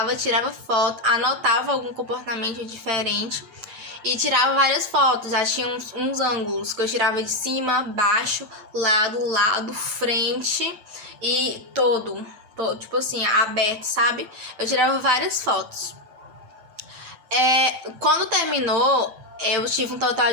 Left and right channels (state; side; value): late; left; 7.9 ms